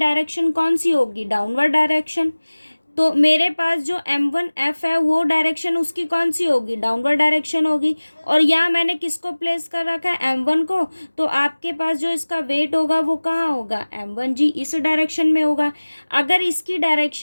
कौन सी होगी, डाउनवर्ड डायरेक्शन। तो मेरे पास जो M1F है वो डायरेक्शन उसकी कौन सी होगी, डाउनवर्ड डायरेक्शन होगी। और यहाँ मैंने किसको प्लेस कर रखा है, M1 को। तो आपके पास जो इसका वेट होगा वो कहाँ होगा, M1G, इस डायरेक्शन में होगा। अगर इसकी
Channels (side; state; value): both; inverted; correlation -1.00